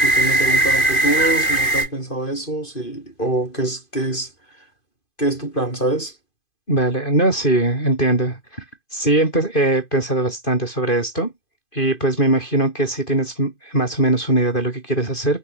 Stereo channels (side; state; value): right; late; 2.5 ms